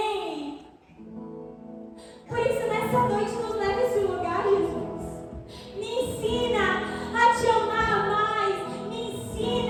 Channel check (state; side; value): identical; both; correlation 1.00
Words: Por isso, nessa noite, nos leva a esse lugar, Jesus. Me ensina a Te amar mais. Me